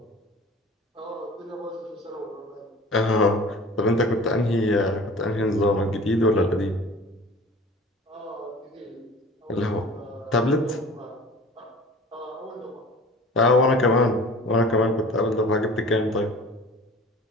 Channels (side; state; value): both; normal; correlation 0.42